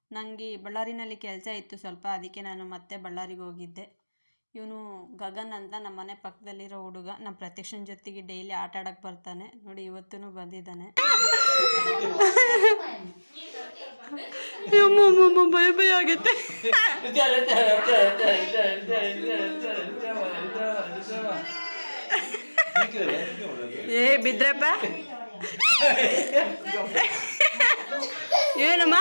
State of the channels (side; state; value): both; inverted; correlation -1.00